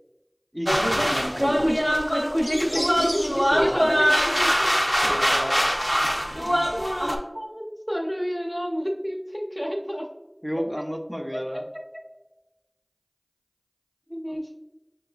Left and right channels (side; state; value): both; identical; correlation 1.00